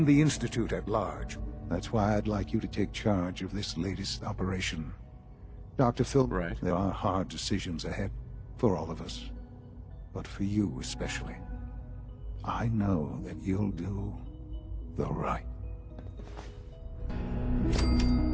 the Institute at large... That's why I'd like you to take charge of this latest operation. Dr. Phil, Right. There are hard decisions ahead, for all of us. But for you especially. I know that you'll do the right.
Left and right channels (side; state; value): both; identical; correlation 1.00